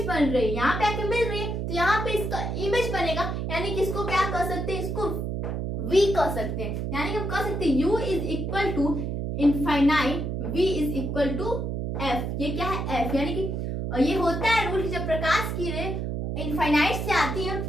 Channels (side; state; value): right; noise; hum, 2 dB below the sound